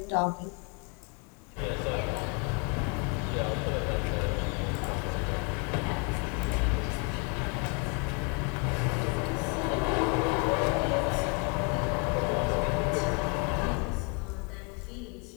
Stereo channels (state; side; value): quieter; right; 33.4 dB